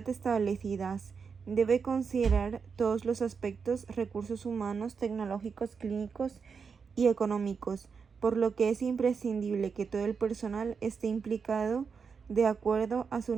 establecidas. Debe considerar todos los aspectos, recursos humanos, tecnológicos, clínicos y económicos, por lo que es imprescindible que todo el personal esté implicado de acuerdo a su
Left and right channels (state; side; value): quieter; left; 5.7 dB